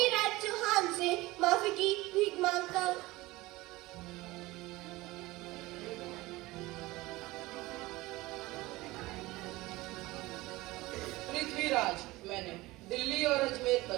चौहान से माफी की भीख मांगता। पृथ्वीराज, मैंने दिल्ली और अजमेर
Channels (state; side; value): quieter; left; 19.9 dB